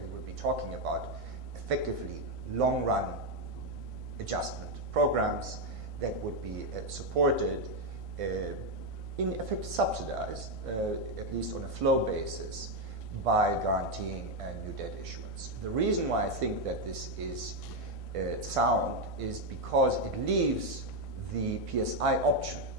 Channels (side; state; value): left; late; 1.6 ms